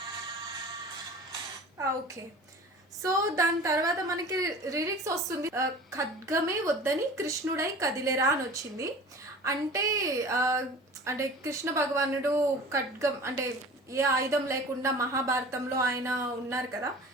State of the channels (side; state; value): both; normal; correlation 0.40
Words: ఓకే, సో దాని తర్వాత మనకి లిరిక్స్ వస్తుంది. ఖడ్గమే వద్దని కృష్ణుడై కదిలేరా అని వచ్చింది. అంటే అంటే కృష్ణ భగవానుడు ఖడ్గం అంటే ఏ ఆయుధం లేకుండా మహాభారతంలో ఆయన ఉన్నారు కదా.